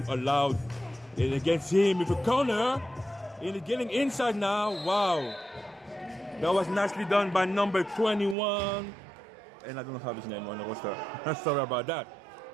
allowed it against him with a corner. And getting inside now. Wow. That was nicely done by number 21. And I don't have his name on the roster. Sorry about that.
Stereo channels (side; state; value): left; drops out; at 8.3 s